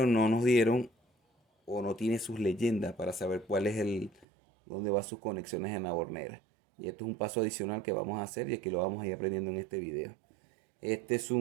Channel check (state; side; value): drops out; left; at 4.2 s